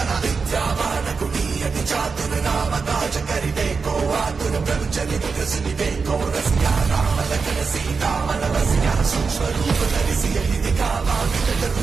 विद्यावान कुटीयति चातुर राम काज करिबे को आतुर ब्रह्मचर्य सुनिबे को रसिया राम लखन सीता मन बसिया सूक्ष्म रूप धरि सियहि दिखावा विकट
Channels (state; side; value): quieter; left; 5.0 dB